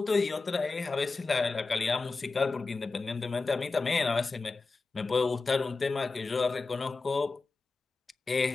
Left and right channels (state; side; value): quieter; right; 3.9 dB